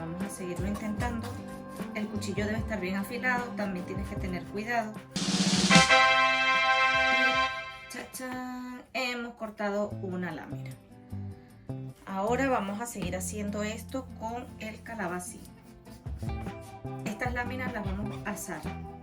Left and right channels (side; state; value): both; identical; correlation 1.00